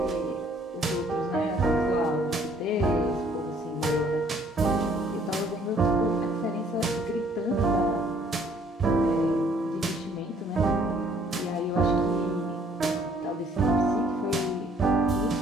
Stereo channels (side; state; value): both; normal; correlation 0.61